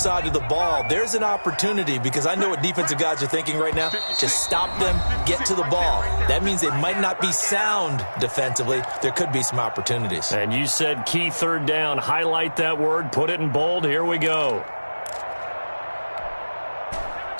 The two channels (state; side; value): inverted; both; correlation -1.00